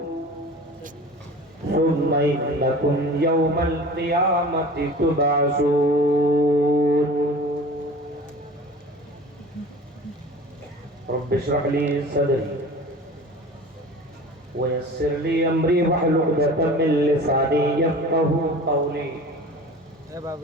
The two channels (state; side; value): normal; both; correlation 0.40